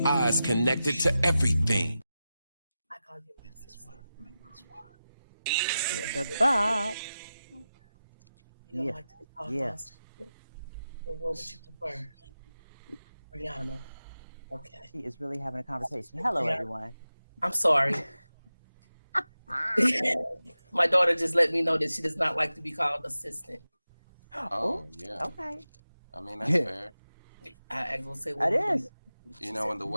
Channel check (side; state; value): both; inverted; correlation -0.93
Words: Eyes connected to everything. I call you that's why. The Bob. You don't like to be called monster. Well, what would you prefer? Rihanna. Okay. She is really having a conversation. Hello, everyone. I'm sorry. My daughter just let me know that she does not like to be called assistant. Oh, yeah. Okay. I mean, that's fair. I will say what it is. You know, when the